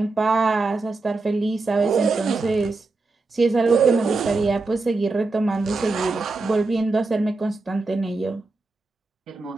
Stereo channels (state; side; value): quieter; left; 3.5 dB